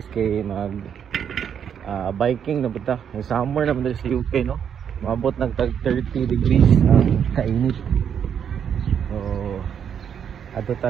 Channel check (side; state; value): left; quieter; 8.2 dB